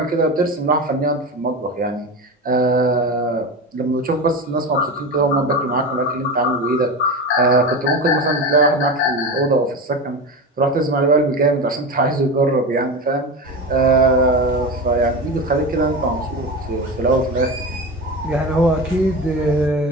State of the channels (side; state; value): both; normal; correlation 0.24